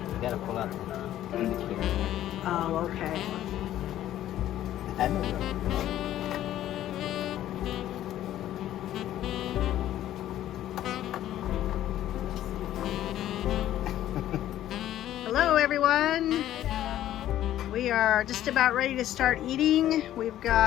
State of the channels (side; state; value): right; quieter; 12.7 dB